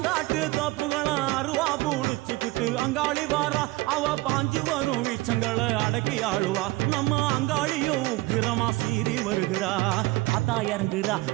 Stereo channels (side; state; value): left; quieter; 20.7 dB